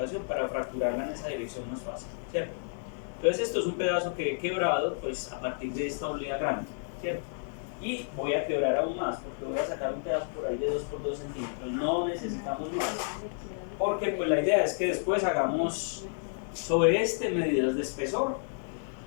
para fracturarla en esa dirección más fácil, ¿cierto? Entonces esto es un pedazo que he quebrado pues a partir de esta olea grande, ¿cierto? Y voy a quebrar aún más, porque voy a sacar un pedazo por ahí de 2 por 2 centímetros, no necesitamos más. Porque pues la idea es que después hagamos sobre este medidas de espesor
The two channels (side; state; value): right; silent; 57 dB below the other